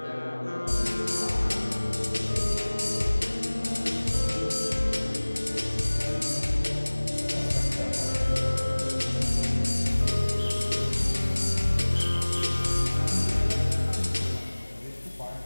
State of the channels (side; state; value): both; inverted; correlation -1.00